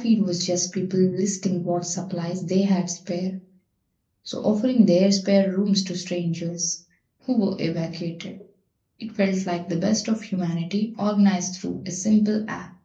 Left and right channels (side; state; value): both; identical; correlation 1.00